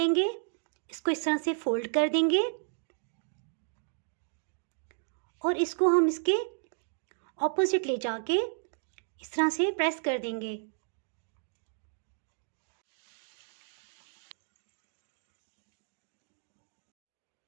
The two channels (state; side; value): silent; left; digital silence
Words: इसको इस तरह से फोल्ड कर देंगे और इसको हम इसके ऑपोजिट ले जाके इस तरह से प्रेस कर देंगे।